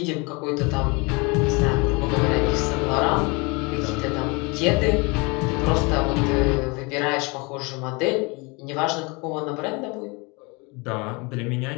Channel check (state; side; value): quieter; right; 28.3 dB